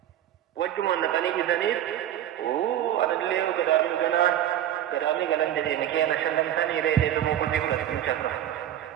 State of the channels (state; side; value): quieter; left; 11.6 dB